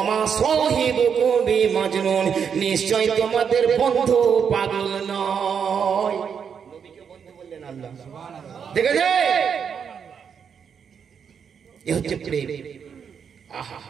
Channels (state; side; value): quieter; left; 7.1 dB